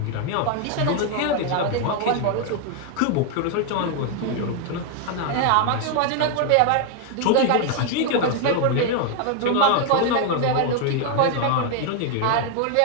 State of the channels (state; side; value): different; both; correlation 0.00